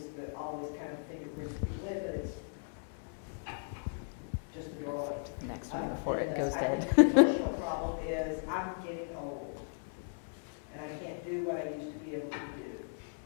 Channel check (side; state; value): right; silent; digital silence